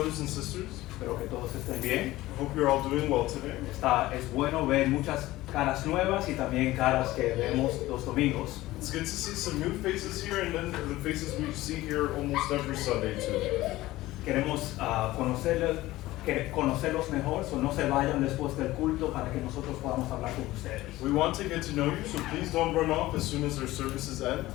and sisters. Espero que todos estén bien. I hope you're all doing well today. Es bueno ver muchas caras nuevas y también caras que vemos los domingos. It's good to see some new faces here and then the faces we see here almost every Sunday too. Queremos conocerlos mejor, so no se vayan después del culto para que nosotros podamos hablar con ustedes. We want to get to know you, so please don't run off as soon as our services end.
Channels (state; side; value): quieter; right; 17.3 dB